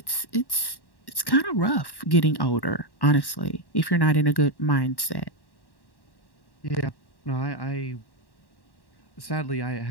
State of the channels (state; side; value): late; right; 1.1 ms